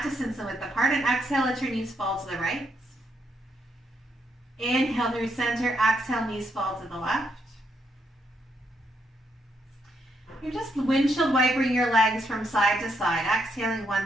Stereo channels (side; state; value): both; normal; correlation 0.77